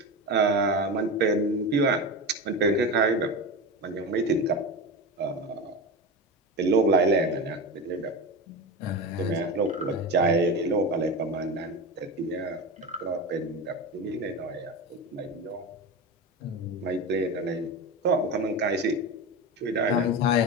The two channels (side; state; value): both; normal; correlation 0.22